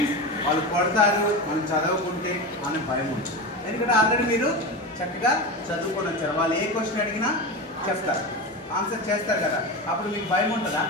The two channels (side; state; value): both; normal; correlation 0.22